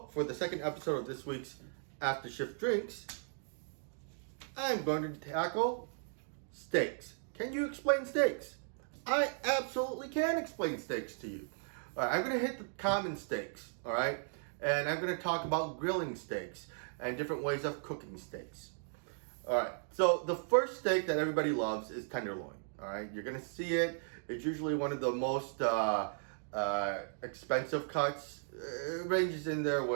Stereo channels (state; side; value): silent; left; digital silence